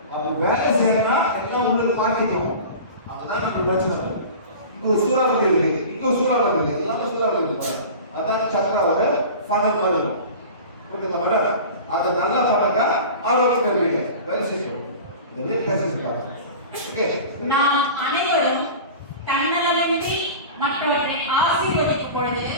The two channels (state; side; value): inverted; both; correlation -0.36